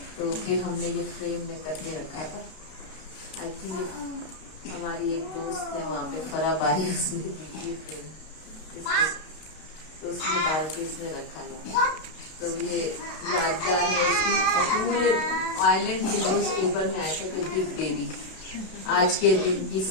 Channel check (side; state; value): right; late; 32 ms